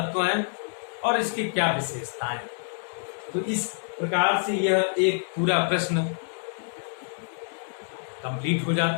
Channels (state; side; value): silent; right; 60 dB below the other